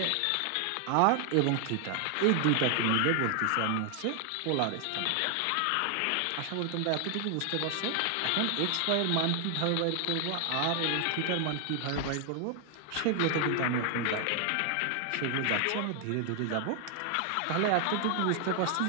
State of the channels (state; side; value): different; both; correlation 0.00